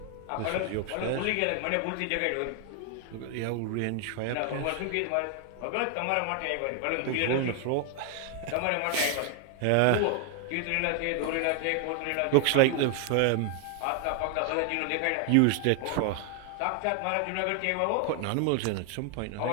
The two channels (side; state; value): both; different; correlation 0.00